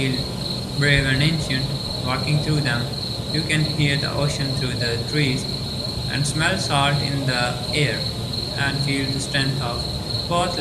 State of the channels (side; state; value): both; identical; correlation 1.00